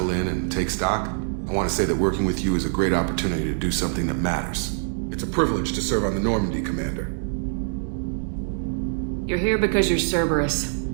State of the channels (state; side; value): silent; left; digital silence